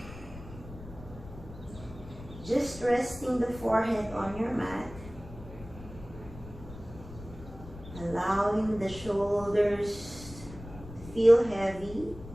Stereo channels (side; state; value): left; noise; rumble, 15 dB below the sound